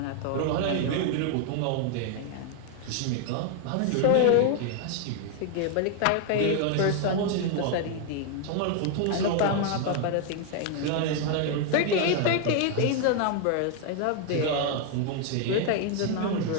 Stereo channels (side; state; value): both; different; correlation 0.00